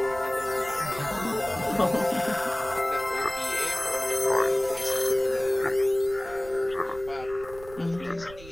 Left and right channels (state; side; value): noise; right; rumble, 18 dB below the sound